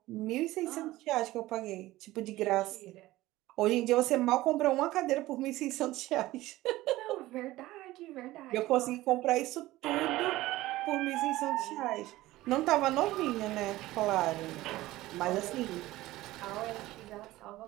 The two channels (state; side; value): quieter; left; 17.3 dB